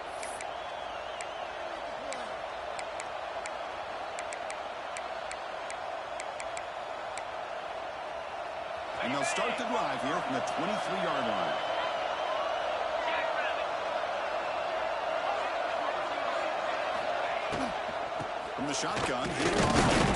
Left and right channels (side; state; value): both; identical; correlation 1.00